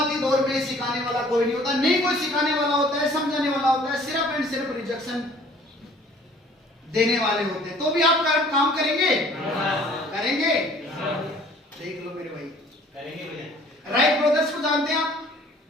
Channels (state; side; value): normal; both; correlation 0.54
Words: दौर में सिखाने वाला कोई नहीं होता, नहीं कोई सिखाने वाला होता है, समझाने वाला होता है, सिर्फ एंड सिर्फ रिजेक्शन देने वाले होते हैं। तो भी आप काम करेंगे? करेंगे? देख लो मेरे भाई, करेंगे भैया। राइट ब्रदर्स को जानते हैं आप?